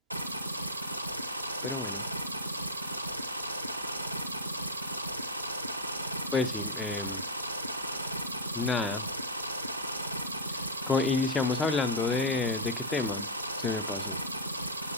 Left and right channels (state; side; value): normal; both; correlation -0.04